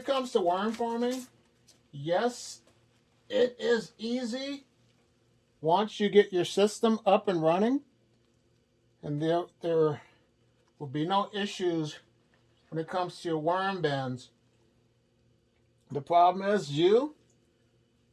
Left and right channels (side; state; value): both; identical; correlation 1.00